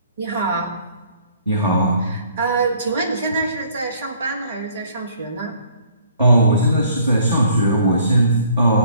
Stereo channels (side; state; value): both; inverted; correlation -0.58